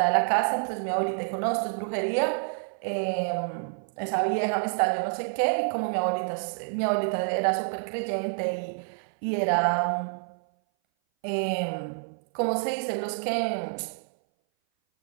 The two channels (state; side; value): silent; left; 58 dB below the other